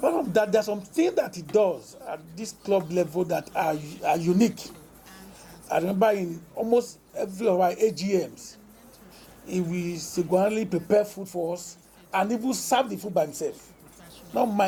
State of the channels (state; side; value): identical; both; correlation 1.00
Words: from that, there are some things that he does at this club level that are unique. I remember in almost every of our AGMs, he will singularly prepare food for us and even serve the food by himself. Not